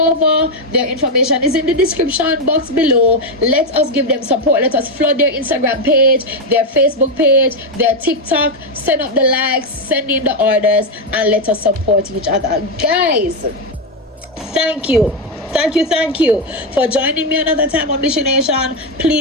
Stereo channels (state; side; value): normal; both; correlation 0.05